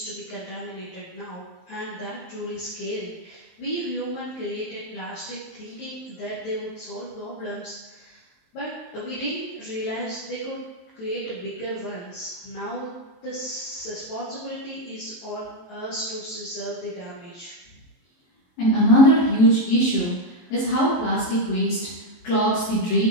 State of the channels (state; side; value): late; right; 23 ms